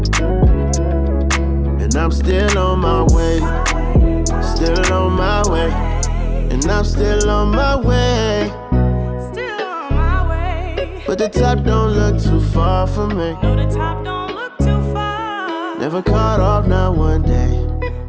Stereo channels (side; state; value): both; identical; correlation 1.00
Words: And I'm still on my way. Still on my way. And I'm still on my way. But the top don't look too far for me. No, the top don't look too far. Never caught off, not one day.